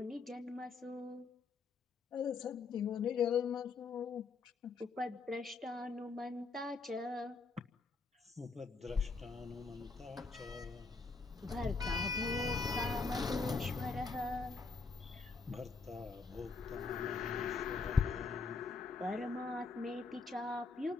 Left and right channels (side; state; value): right; quieter; 4.4 dB